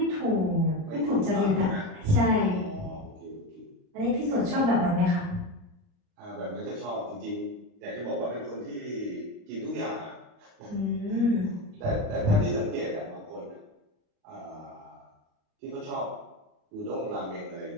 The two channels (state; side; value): late; left; 38 ms